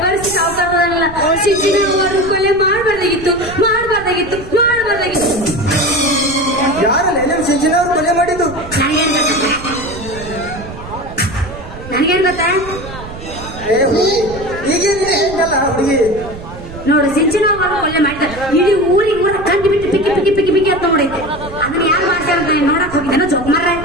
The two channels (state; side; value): noise; right; rumble, 13 dB below the sound